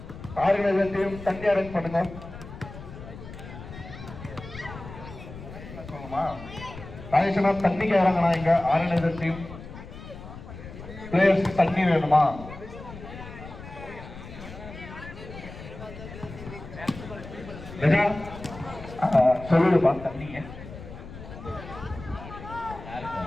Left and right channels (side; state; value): left; noise; rumble, 13 dB below the sound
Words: ஆர்கனைசர் டீம் தண்ணி அரேஞ்ச் பண்ணுங்க. ராஜேஷனா தண்ணிக்கு இறங்கண்ணா. இங்க ஆர்கனைசர் டீம் பிளேயர்ஸ்க்கு தண்ணி வேணுமா? சொல்லுப்பா தண்ணிங்க.